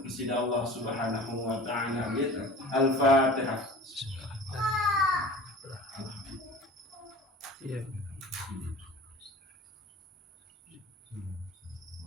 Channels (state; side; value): normal; both; correlation 0.40